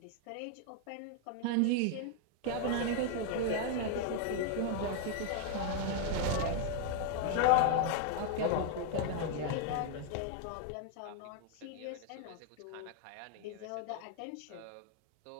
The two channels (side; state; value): both; different; correlation 0.01